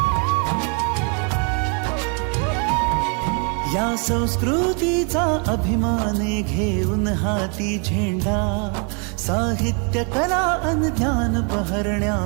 या संस्कृतीचा अभिमान घेऊन हाती झेंडा. साहित्य कला अन ज्ञान बहरण्या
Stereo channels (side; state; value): left; quieter; 37.6 dB